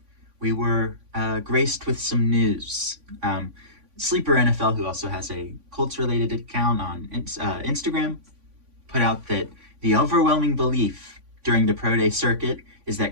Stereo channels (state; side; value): late; left; 3.5 ms